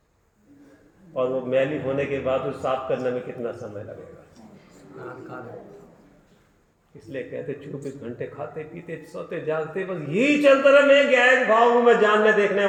और वो मैली होने के बाद उसे साफ करने में कितना समय लगेगा? इसलिए कहते 24 घंटे खाते पीते सोते जागते बस यही चलता रहा। मैं ज्ञान भाव हूं, मैं जानने देखने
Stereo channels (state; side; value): identical; both; correlation 1.00